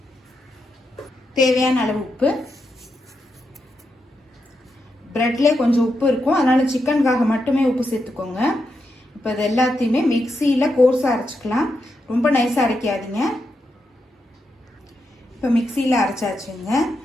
தேவையான அளவு உப்பு. பிரெட்ல கொஞ்சம் உப்பு இருக்கும், அதனால சிக்கனுக்காக மட்டுமே உப்பு சேர்த்துக்கோங்க. இப்போ இது எல்லாத்தையுமே மிக்சியில் கோர்ஸாக அரைச்சிக்கலாம். ரொம்ப நைஸாக அரைக்காதீங்க. இப்போ மிக்சியில் அரைச்சாச்சுங்க.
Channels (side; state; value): both; normal; correlation 0.84